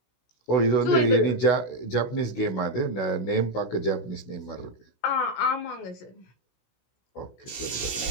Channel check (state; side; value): late; right; 16 ms